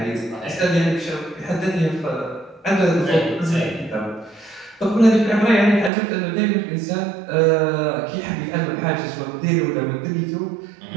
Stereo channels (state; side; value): drops out; left; at 5.9 s